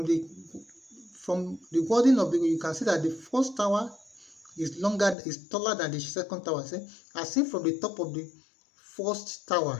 the wording of you can see that the first tower is taller than the second tower. As seen from the top of the first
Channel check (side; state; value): right; drops out; at 5.2 s